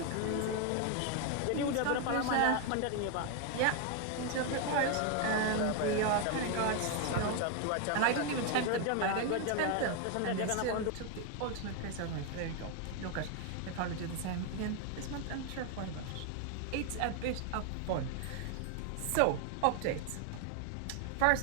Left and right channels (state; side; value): different; both; correlation 0.01